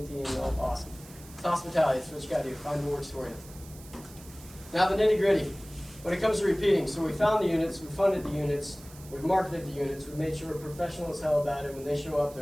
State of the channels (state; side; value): noise; right; hiss, 20 dB below the sound